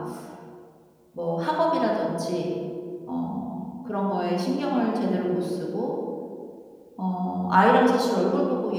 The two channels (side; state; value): both; identical; correlation 1.00